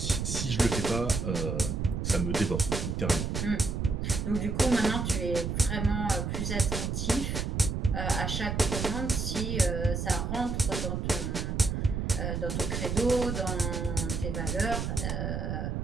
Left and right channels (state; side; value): noise; right; rumble, 2 dB below the sound